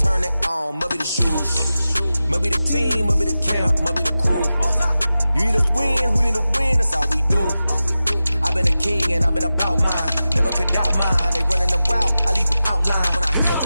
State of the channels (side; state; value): both; inverted; correlation -0.94